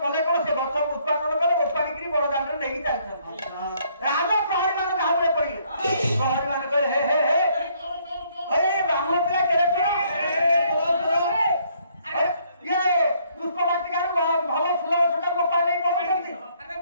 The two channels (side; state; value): both; inverted; correlation -0.67